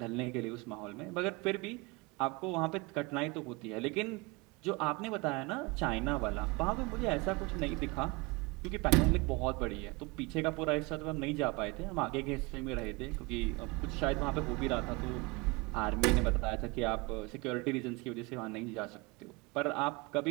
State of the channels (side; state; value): left; quieter; 25.8 dB